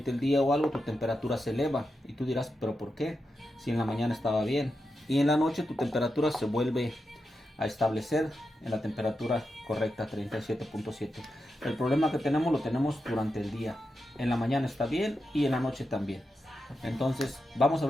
el día o algo, tu temperatura se eleva. Y tú dirás, ¿pero por qué? Si en la mañana estaba bien. Y en la noche tu temperatura se vuelve a establecer en la temperatura correcta, 37.7. El problema que tenemos lo tenemos durante el día. En la mañana está bien y en la noche también. Entonces vamos a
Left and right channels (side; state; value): both; normal; correlation 0.88